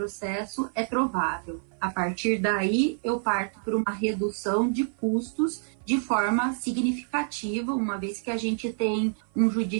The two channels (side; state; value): left; silent; 55 dB below the other